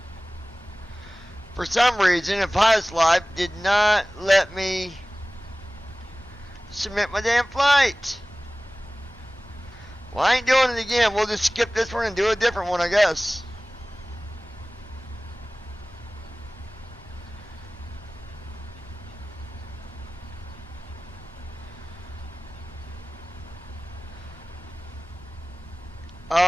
For some reason, Pius Life did not let me submit my damn flight. Well, I ain't doing it again. We'll just skip this one and do a different one, I guess.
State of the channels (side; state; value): both; normal; correlation 0.98